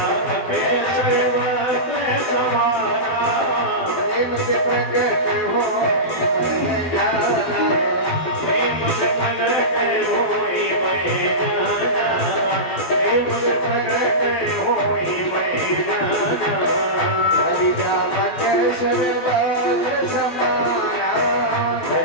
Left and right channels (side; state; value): right; late; 12 ms